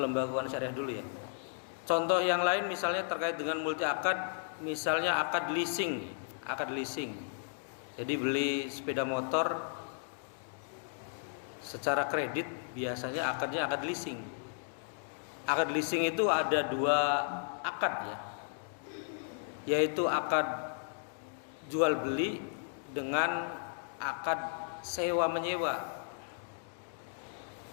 lembaga keuangan syariah dulu ya. Contoh yang lain misalnya terkait dengan multi akad, misalnya akad leasing. Jadi beli sepeda motor secara kredit, biasanya akadnya akad leasing. Akad leasing itu ada dua akad ya, yaitu akad jual beli dengan akad sewa menyewa.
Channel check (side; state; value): right; silent; digital silence